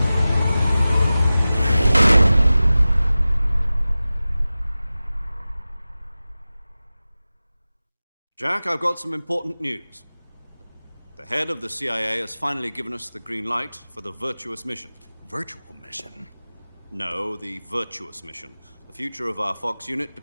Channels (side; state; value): both; inverted; correlation -0.97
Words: Jack, I've got some important news. The head of the CIA has finally given us the green light for the Virtuous mission. Virtual mission? No, the Virtuous mission. The future of our Fox unit